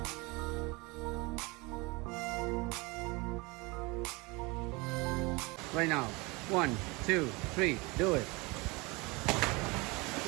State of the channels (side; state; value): left; quieter; 25.7 dB